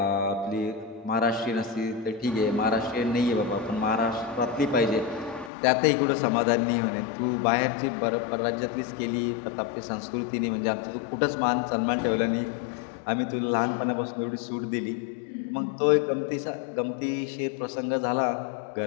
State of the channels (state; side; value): drops out; right; at 5.5 s